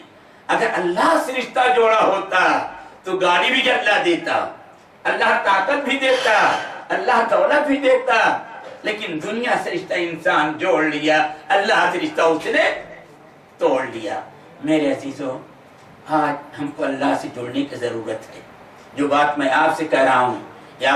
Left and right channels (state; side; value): identical; both; correlation 1.00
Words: اگر اللہ سے رشتہ جوڑا ہوتا تو گاڑی بھی اللہ دیتا، اللہ طاقت بھی دیتا، اللہ دولت بھی دیتا، لیکن دنیا سے رشتہ انسان جوڑ لیا، اللہ سے رشتہ اس نے توڑ لیا۔ میرے عزیزو، آج ہم کو اللہ سے جوڑنے کی ضرورت ہے۔ جو بات میں آپ سے کہہ رہا ہوں یہ